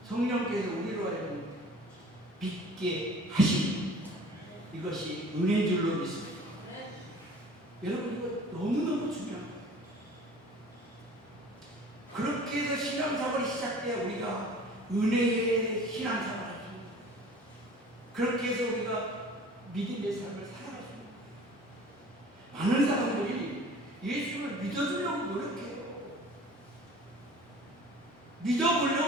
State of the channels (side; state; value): both; normal; correlation 0.46